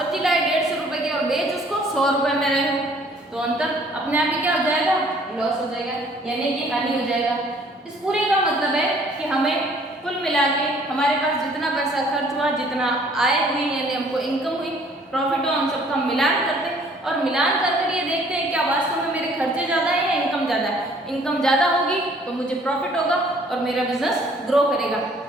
लाए 150 रुपए की और बेच उसको 100 रुपए में रहे हो, तो अंतर अपने आप ही क्या हो जाएगा लॉस हो जाएगा यानी कि हानि हो जाएगा। इस पूरे का मतलब है कि हमें कुल मिला के हमारे पास जितना पैसा खर्च हुआ, जितना आय हुई यानी हमको इनकम हुई, प्रॉफिट हुआ, हम सबका मिलान करते हैं और मिलान करके ये देखते हैं क्या वास्तव में मेरे खर्चे ज़्यादा है या इनकम ज़्यादा है। इनकम ज़्यादा होगी तो मुझे प्रॉफिट होगा और मेरा बिजनेस ग्रो करेगा।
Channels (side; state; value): both; normal; correlation 0.58